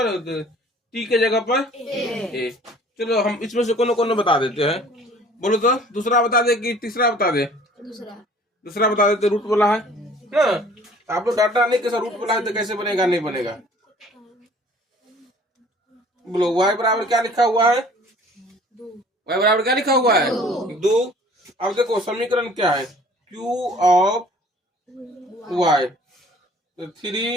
t के जगह पर a। चलो हम इसमें से कोनो बता देते हैं। बोलो तो दूसरा बता दे कि तीसरा बता दे? दूसरा बता देते, रूट बोला है ना। आप लोग डाटा नहीं कैसा रूट बोला है तो कैसे बनेगा? नहीं बनेगा। बोलो y बराबर क्या लिखा हुआ है? y बराबर क्या लिखा हुआ है? 2। अब देखो समीकरण क्या है? q ऑफ y, तो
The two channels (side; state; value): both; normal; correlation 0.52